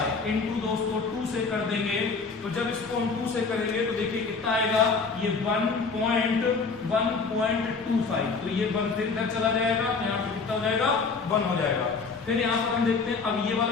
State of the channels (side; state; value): right; quieter; 4.6 dB